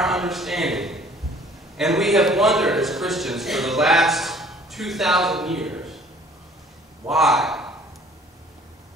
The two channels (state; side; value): normal; both; correlation 0.53